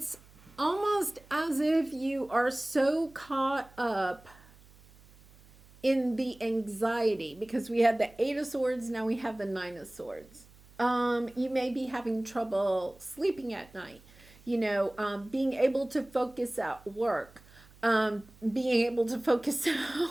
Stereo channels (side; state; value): right; noise; hum, 25 dB below the sound